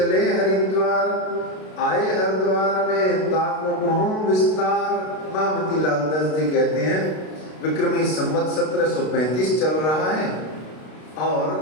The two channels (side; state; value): right; late; 32 ms